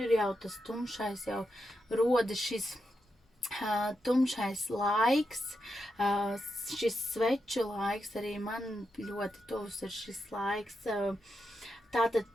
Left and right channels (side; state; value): both; normal; correlation 0.86